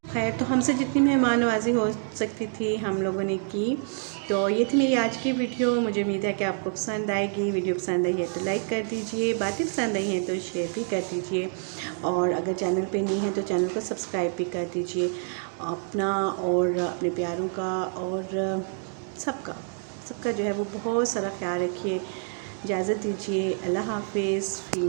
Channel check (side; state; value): left; silent; 60 dB below the other